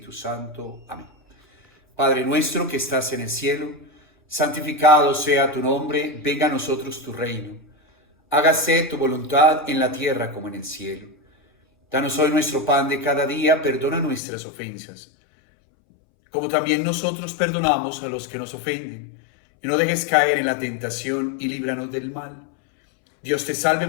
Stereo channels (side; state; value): right; drops out; at 14.2 s